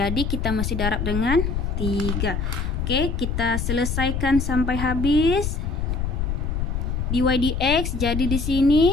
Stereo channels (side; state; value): left; noise; rumble, 2 dB below the sound